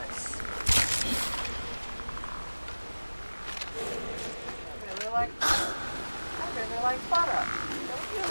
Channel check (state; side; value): inverted; both; correlation -1.00